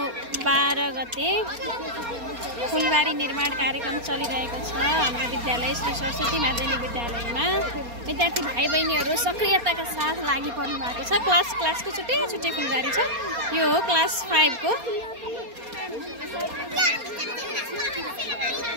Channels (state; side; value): late; left; 4.3 ms